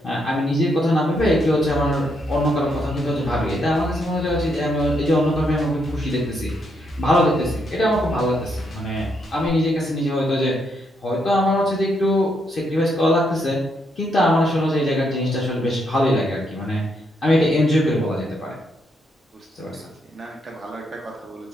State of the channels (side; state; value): both; normal; correlation 0.77